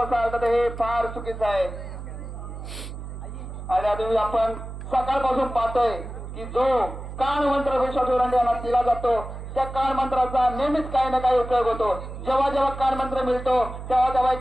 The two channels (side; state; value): right; noise; hum, 10 dB below the sound